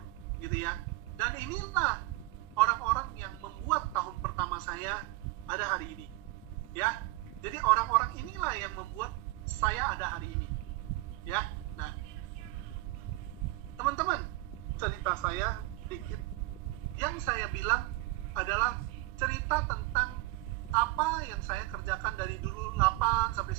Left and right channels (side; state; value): left; quieter; 20.2 dB